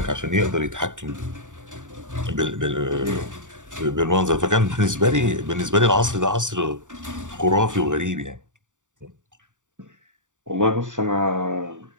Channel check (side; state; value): left; late; 0.86 ms